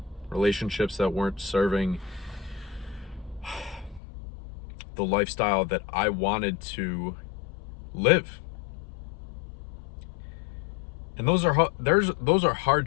relationships that weren't serving the lifestyle that I wanted to live. And those are hard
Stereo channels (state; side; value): drops out; right; at 4.0 s